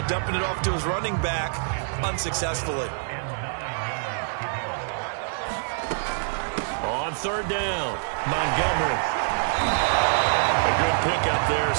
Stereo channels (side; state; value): left; silent; digital silence